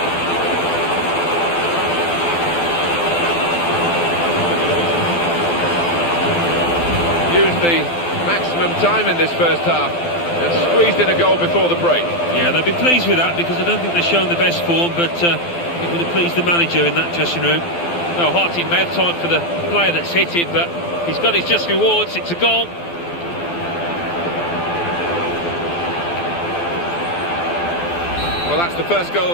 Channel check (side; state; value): right; late; 12 ms